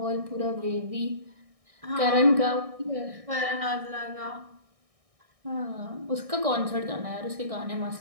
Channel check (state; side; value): late; left; 1.6 ms